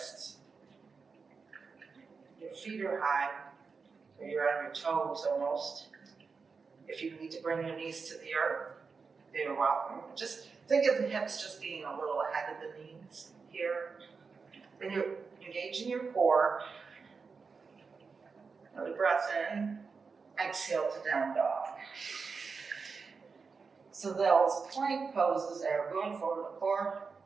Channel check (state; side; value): quieter; left; 5.0 dB